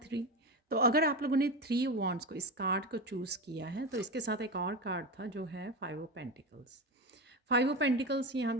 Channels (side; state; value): both; normal; correlation 0.20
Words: 3। तो अगर आप लोगों ने 3 वॉन्ड्स को, इस कार्ड को चूज़ किया है, तो इसके साथ एक और कार्ड था जो है 5 ऑफ पेंटिकल्स। 5 ऑफ पेंटिकल्स यहाँ